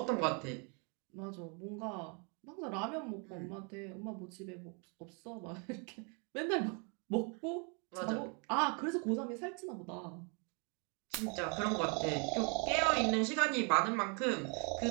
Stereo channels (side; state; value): left; quieter; 36.2 dB